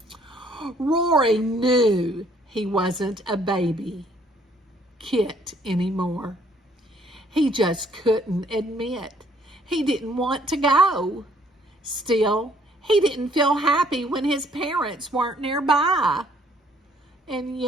Rory knew he wasn't a baby Kit anymore. He just couldn't admit he didn't want to go. Still, he didn't feel happy when his parents weren't nearby. And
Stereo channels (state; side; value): normal; both; correlation 0.63